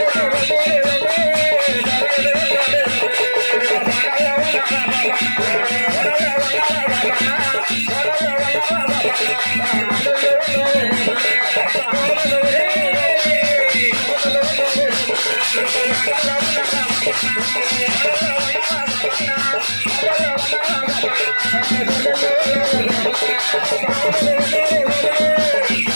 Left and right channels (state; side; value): inverted; both; correlation -1.00